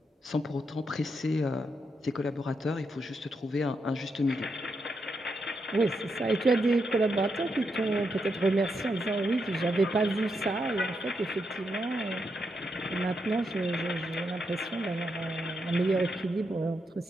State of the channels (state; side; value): normal; both; correlation 0.82